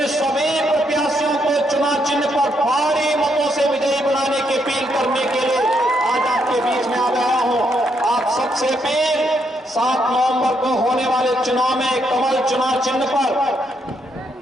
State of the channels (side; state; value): both; normal; correlation 0.76